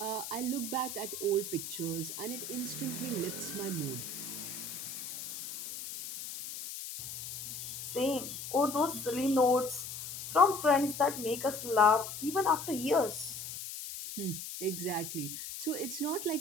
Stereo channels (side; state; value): left; noise; hiss, 8 dB below the sound